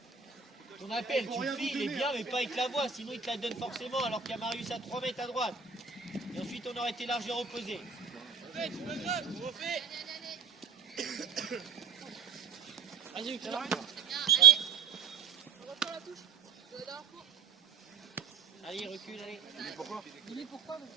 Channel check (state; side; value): quieter; left; 6.3 dB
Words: Ton appel, Faut tu le rien fais, vous il est donner, bien, mais pas avec la voix, sinon il te la donne forcément, alors qu'il y a Marius à 3 mètres à droite. Et ensuite, on aurait été largement opposé. Fais, tu me grave, tu refais. Vas-y, Bien, allez. On reprend la touche. De la dernière fois. allez, recule, allez. Pourquoi? Il est pourquoi parce